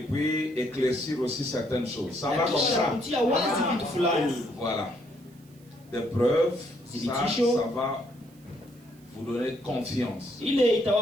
éclaircir aussi certaines choses. Ça va comme ça. Voilà. Des preuves, ça va vous donner confiance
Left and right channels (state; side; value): noise; right; hiss, 29 dB below the sound